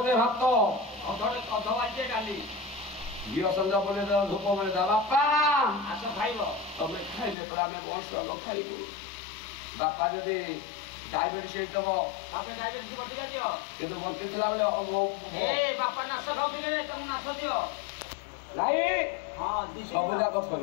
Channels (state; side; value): drops out; right; at 7.4 s